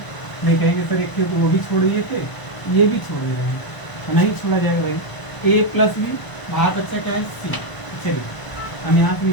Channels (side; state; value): right; late; 1.0 ms